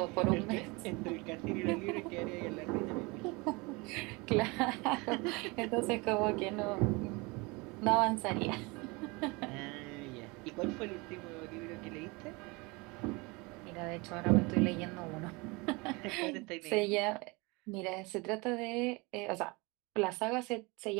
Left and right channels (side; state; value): left; quieter; 26.3 dB